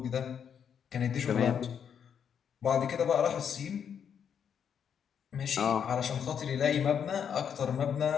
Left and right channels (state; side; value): quieter; right; 7.9 dB